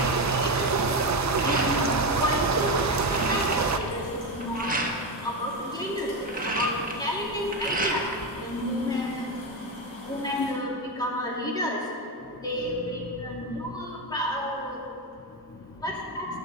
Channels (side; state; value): both; normal; correlation 0.13